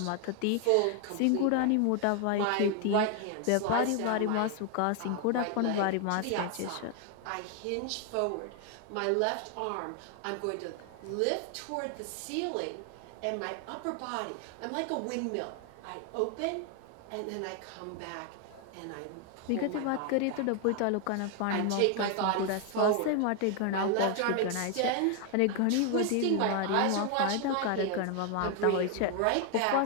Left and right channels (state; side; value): different; both; correlation 0.00